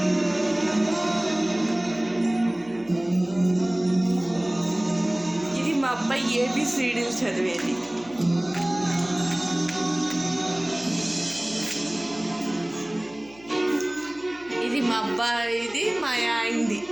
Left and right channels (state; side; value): noise; left; hum, 24 dB below the sound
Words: ఇది మా అబ్బాయి ఏబిసిడీలు చదివేది. ఇది మా అబ్బాయిది మా ఆయనది